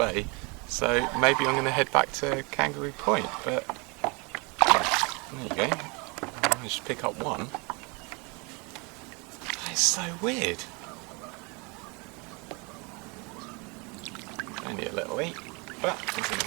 so maybe I'm going to head back to Kangaroo Point, but there you go. I managed to pick up one. That is so weird. Only a little eat, but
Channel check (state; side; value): quieter; left; 30.2 dB